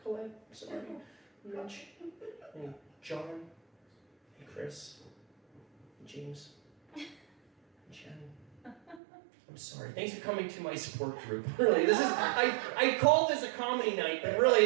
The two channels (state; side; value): drops out; left; at 9.0 s